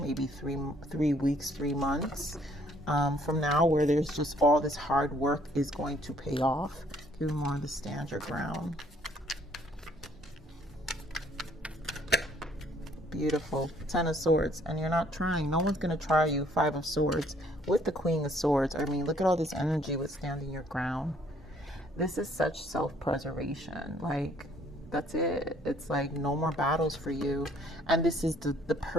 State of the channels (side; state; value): both; normal; correlation 0.63